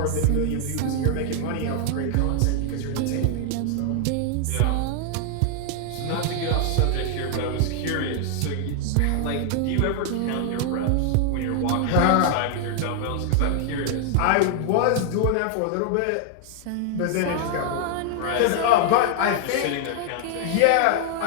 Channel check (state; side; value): different; both; correlation 0.00